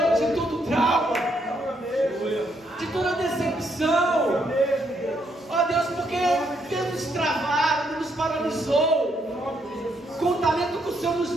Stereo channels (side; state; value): both; normal; correlation 0.74